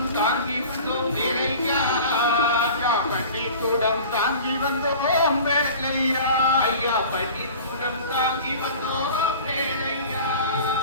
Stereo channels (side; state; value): both; inverted; correlation -0.41